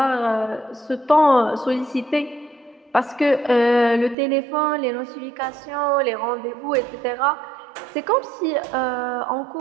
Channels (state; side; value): drops out; left; at 4.2 s